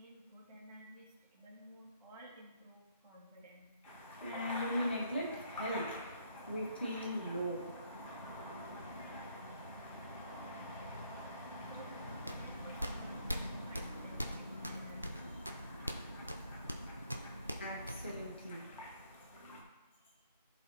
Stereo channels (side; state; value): both; inverted; correlation -0.68